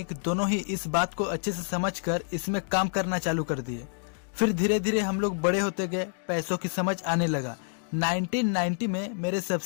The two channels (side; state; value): right; silent; digital silence